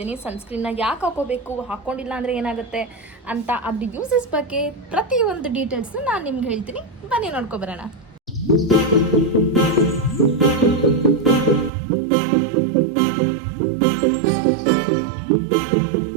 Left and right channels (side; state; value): left; drops out; at 11.7 s